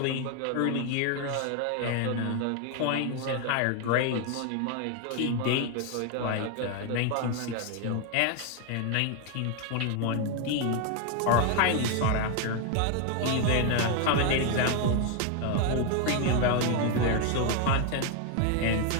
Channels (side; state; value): both; different; correlation 0.01